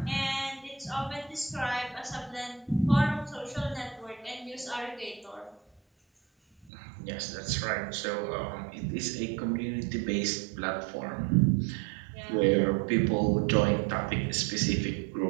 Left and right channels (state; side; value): drops out; left; at 6.7 s